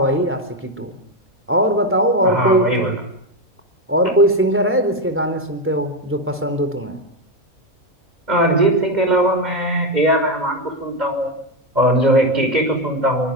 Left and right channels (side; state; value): both; normal; correlation 0.09